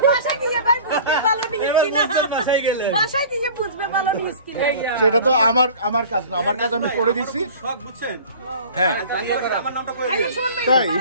সেটা তো আমার কাজ না, আমার কাজ আমি করে দিছি। হ্যাঁ তাই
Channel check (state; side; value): inverted; both; correlation -0.43